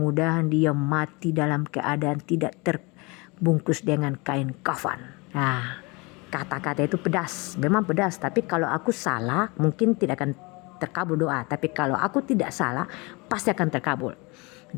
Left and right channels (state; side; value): quieter; right; 27.1 dB